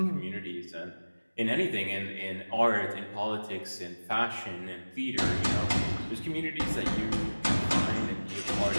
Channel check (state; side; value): inverted; both; correlation -1.00